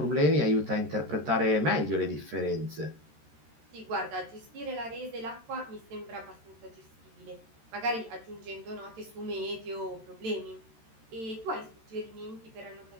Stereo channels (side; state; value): left; late; 13 ms